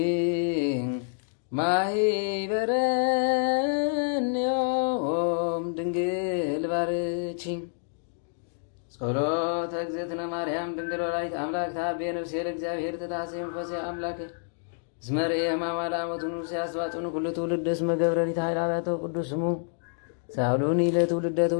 ማኅበረንዮ ጸሎተ እግዝእትነ ማርያም ድንግል ወላዲተ አምላክ ታቤ ነፍሴ ለእግዚአብሔር ተታሰይ መንፈሴ አምላክ እስመ ርኤ ሕማማ ለአመቱ ንጉሥ ያስዋጭን ኩሉ ትውልድ እስመ ገብረኒት ኃይላቶ ቅዱስ ስሙ ሳሉኒ ለትውልደ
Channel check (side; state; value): right; silent; digital silence